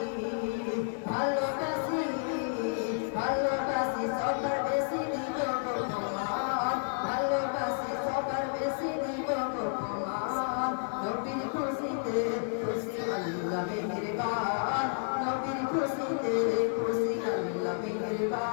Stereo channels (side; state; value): right; silent; digital silence